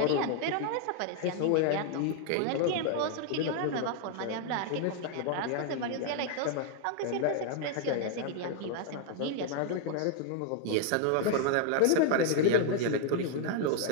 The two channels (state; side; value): different; both; correlation 0.00